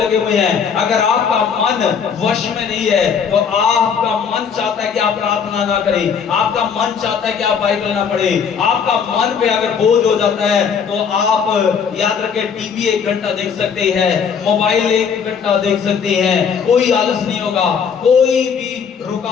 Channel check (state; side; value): quieter; right; 6.7 dB